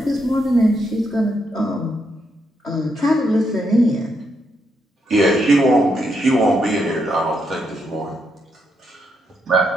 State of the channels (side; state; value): both; normal; correlation 0.79